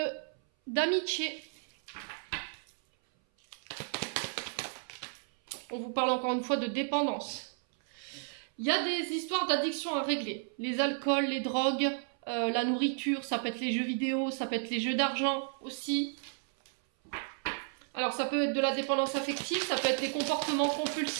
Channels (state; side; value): silent; left; 56 dB below the other